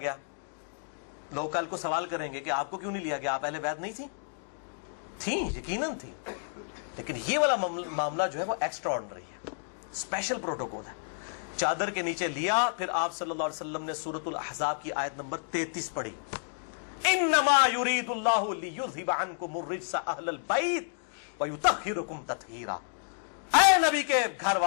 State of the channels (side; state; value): right; silent; digital silence